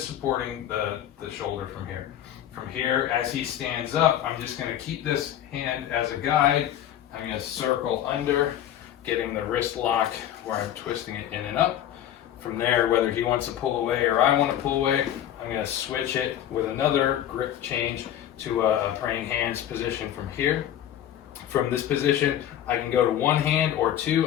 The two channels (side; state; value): right; quieter; 11.1 dB